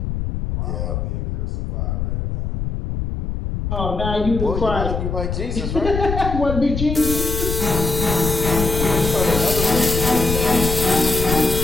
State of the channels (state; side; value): noise; left; rumble, 3 dB below the sound